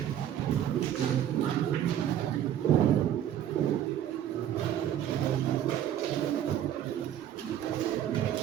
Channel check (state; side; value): quieter; left; 10.9 dB